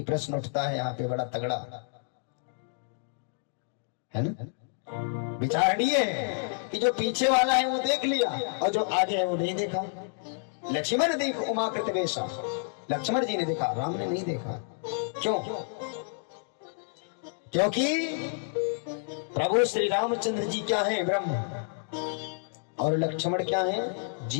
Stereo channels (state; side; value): silent; right; digital silence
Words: प्रश्न उठता है यहाँ पे बड़ा तगड़ा, है ना? विचारणीय है कि जो पीछे वाला है वो देख लिया और जो आगे है वो नहीं देखा। लक्ष्मण देख उमाकृत वेशा, लक्ष्मण जी ने देखा, राम ने नहीं देखा। क्यों? क्योंकि प्रभु श्री रामचंद्र जी क्या है? ब्रह्म, और लक्ष्मण क्या है?